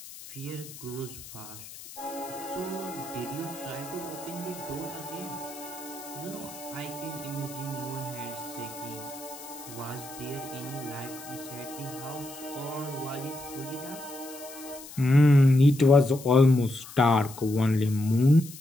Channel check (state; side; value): noise; left; hiss, 15 dB below the sound